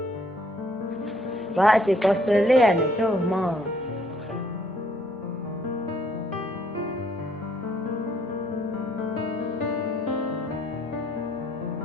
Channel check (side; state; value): both; normal; correlation 0.65